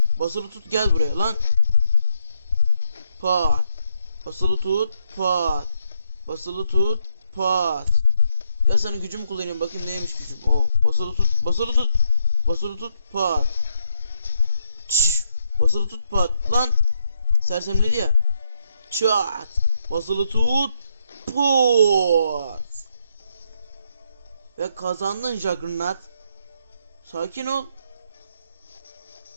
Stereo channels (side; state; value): both; inverted; correlation -0.77